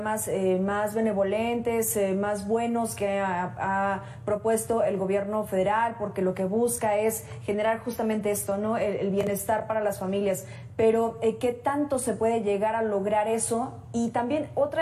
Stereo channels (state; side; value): identical; both; correlation 1.00